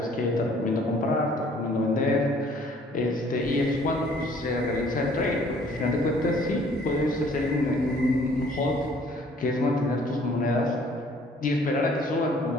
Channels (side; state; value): both; normal; correlation 0.58